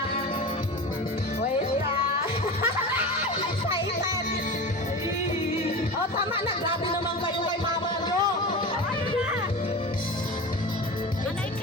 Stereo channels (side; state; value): both; normal; correlation 0.29